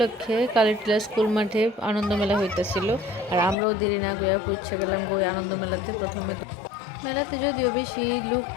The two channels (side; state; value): right; drops out; at 3.6 s